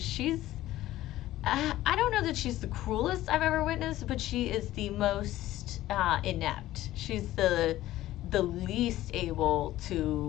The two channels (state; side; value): quieter; right; 15.0 dB